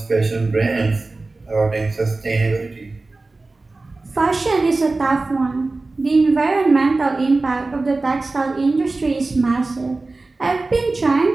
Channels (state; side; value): quieter; left; 3.4 dB